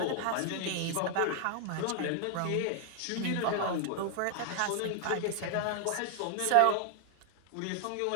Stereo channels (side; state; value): both; different; correlation 0.00